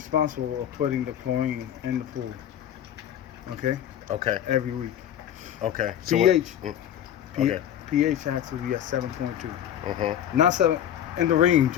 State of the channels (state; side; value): quieter; right; 10.4 dB